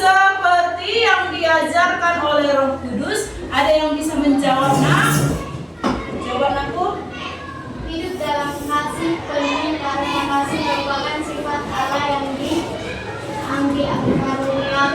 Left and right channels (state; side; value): identical; both; correlation 1.00